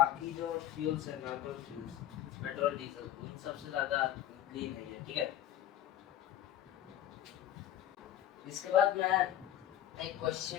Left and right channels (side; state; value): right; quieter; 11.9 dB